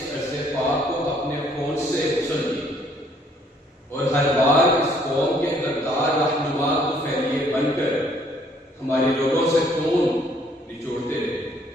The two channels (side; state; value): both; normal; correlation 0.63